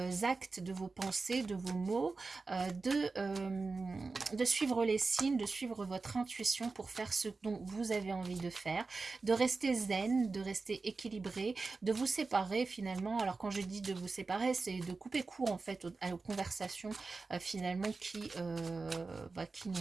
de vos pensées, de vos mots, de suivre les signes, de suivre votre intuition pour faire ce dont vous avez envie de faire, de rester zen, de rester équilibré, de vous séparer finalement. Alors quand je dis de vous séparer, c'est de couper court en fait aux conversations finalement qui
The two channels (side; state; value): left; quieter; 4.0 dB